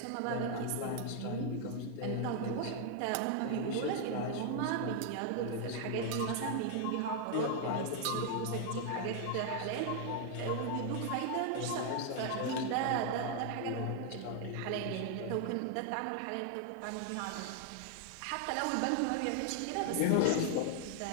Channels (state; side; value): different; both; correlation 0.00